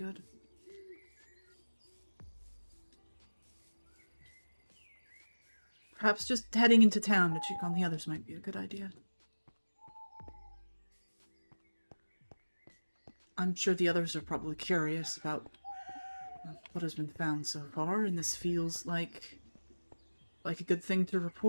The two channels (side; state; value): both; inverted; correlation -1.00